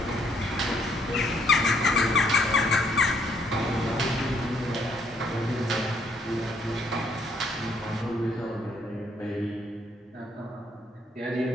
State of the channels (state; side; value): normal; both; correlation 0.68